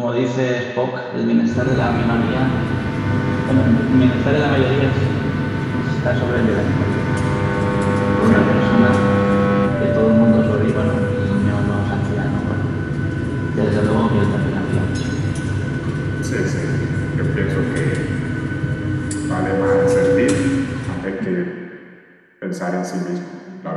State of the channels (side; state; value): both; identical; correlation 1.00